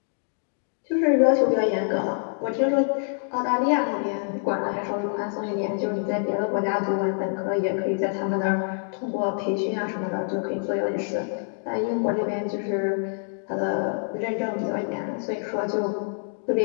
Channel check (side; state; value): right; silent; digital silence